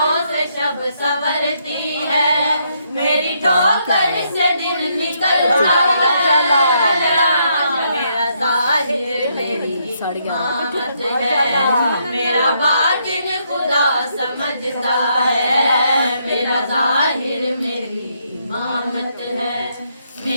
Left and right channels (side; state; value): both; inverted; correlation -0.74